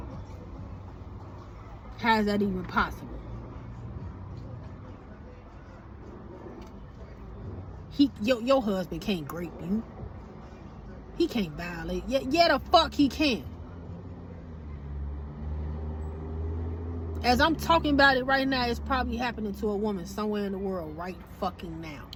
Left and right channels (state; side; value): identical; both; correlation 1.00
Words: How is that even possible? Your husband can't rape you. He can't violate. Yeah, the fuck he can. As I'm talking about it right now, it's probably happening to a woman somewhere in the world right fucking now.